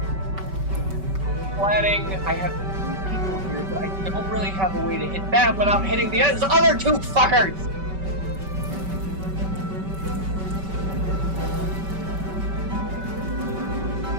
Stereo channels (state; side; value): late; left; 5.2 ms